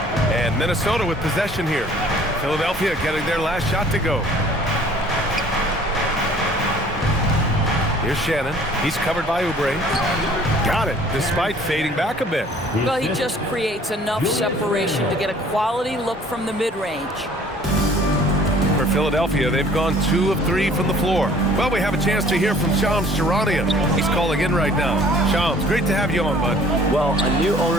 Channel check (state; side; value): normal; both; correlation 0.53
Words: And Minnesota with possession here. Philadelphia getting their last shot to go. Here's Shannon. He's covered by Oubre. Got it, despite fading back a bit. Well, he just creates enough separation to get a quality look from the mid-range. For Philadelphia, they've gone 2 of 3 from the floor. Well, we have a chance to hear from Shams Charania. He's calling in right now. Shams, great to have you on, bud. Well, a new